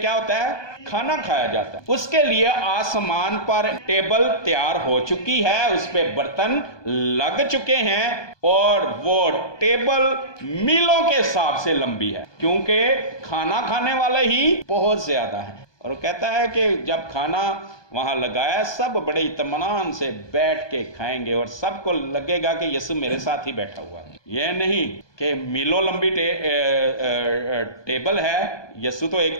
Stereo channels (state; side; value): late; right; 1.2 ms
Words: होता है? खाना खाया जाता है। उसके लिए आसमान पर टेबल तैयार हो चुकी है, उस पे बर्तन लग चुके हैं और वो टेबल मीलों के हिसाब से लंबी है, क्योंकि खाना खाने वाले ही बहुत ज्यादा है। और वो कहता है कि जब खाना वहां लगाया, सब बड़े इत्मीनान से बैठ के खाएंगे और सबको लगेगा कि यीशु मेरे साथ ही बैठा हुआ है। यह नहीं कि मीलों लंबी टेबल है, यीशु तो एक